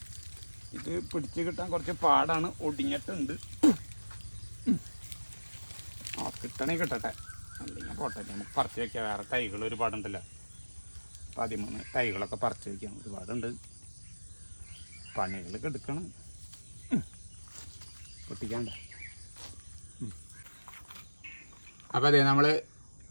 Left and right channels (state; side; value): inverted; both; correlation -1.00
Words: ഇത് പിടിച്ച് കിട്ടാൻ കുറച്ച് പാടാണ്, ഒടിഞ്ഞിട്ടുണ്ട്. ആ കിട്ടണേ കിട്ടട്ടെ, അല്ലെങ്കിൽ പോട്ടെ. നമുക്ക് പറിച്ച് വയ്ക്കാം. വേറെ തൈകൾ ഒരുപാടുണ്ടല്ലോ, 13 തൈകളൊക്കെ പറിച്ച് വയ്ക്കാം. ഒരുപാടുണ്ട്, പണികളൊക്കെ എടുക്കണം. പൊട്ടിക്കാണ്ട. അപ്പോൾ അതെ, നമ്മൾ